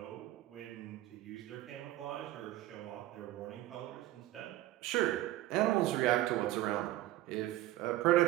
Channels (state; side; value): quieter; left; 15.5 dB